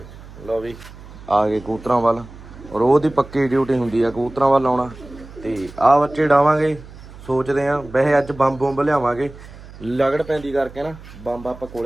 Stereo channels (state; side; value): noise; right; hum, 18 dB below the sound